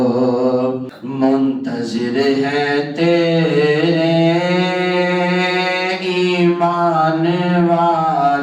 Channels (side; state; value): both; identical; correlation 1.00